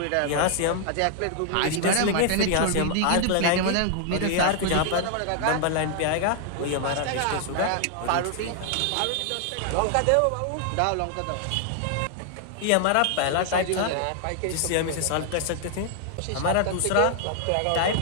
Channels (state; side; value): different; both; correlation 0.00